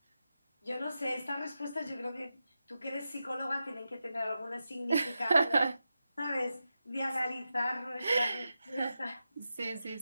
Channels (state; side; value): inverted; both; correlation -0.90